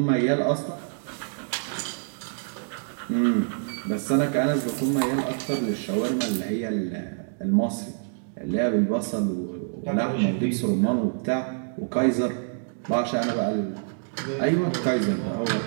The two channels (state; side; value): silent; left; digital silence